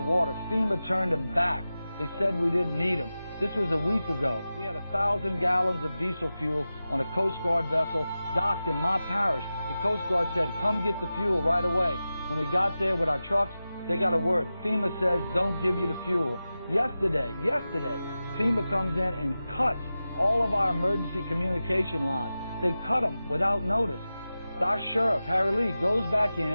water. FEMA turned them back. They said we didn't need them. This was a week ago. We had 1,000 gallons of diesel fuel on a Coast Guard vessel docked in my parish. The Coast Guard said, come get the fuel right away. When we got there with our trucks, they got a word. FEMA says, don't give you the fuel. Yesterday, FEMA comes in and cuts all of our emergency communication lines. They cut them without notice. Our sheriff, Harry Lee, goes back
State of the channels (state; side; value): inverted; both; correlation -0.94